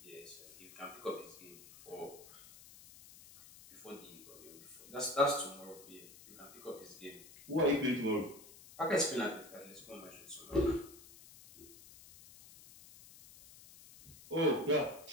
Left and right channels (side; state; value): left; noise; hiss, 19 dB below the sound